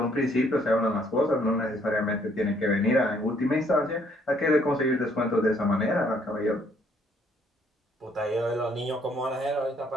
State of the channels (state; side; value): normal; both; correlation 0.66